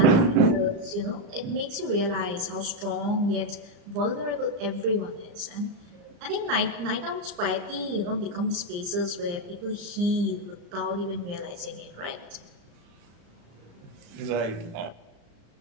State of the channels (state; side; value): late; left; 34 ms